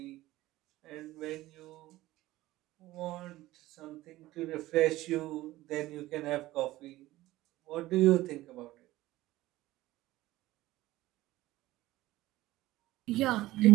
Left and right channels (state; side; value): quieter; left; 17.0 dB